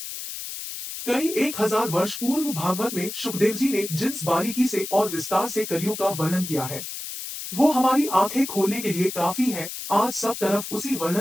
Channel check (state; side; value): noise; left; hiss, 8 dB below the sound